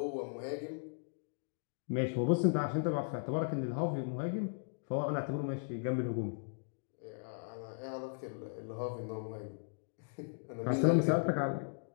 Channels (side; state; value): right; silent; digital silence